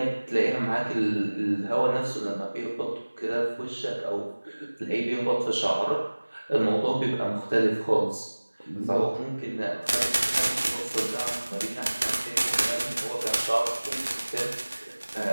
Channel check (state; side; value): inverted; both; correlation -1.00